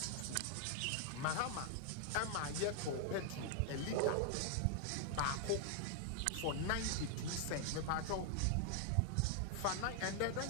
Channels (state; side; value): different; both; correlation 0.00